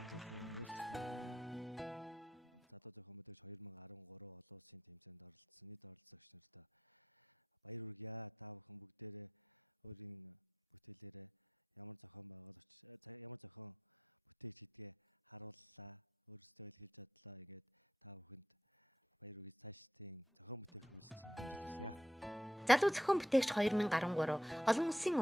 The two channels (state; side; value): normal; both; correlation 0.87